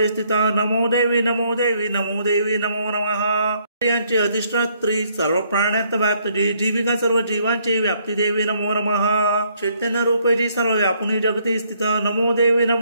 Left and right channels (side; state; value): both; inverted; correlation -0.69